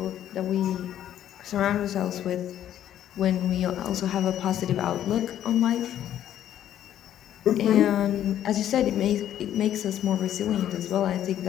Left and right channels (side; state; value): right; quieter; 11.2 dB